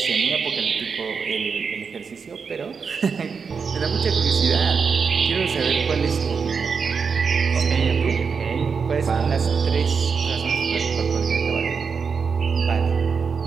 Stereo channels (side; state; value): left; quieter; 5.7 dB